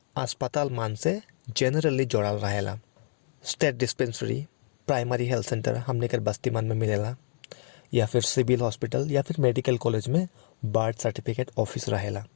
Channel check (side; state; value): right; silent; digital silence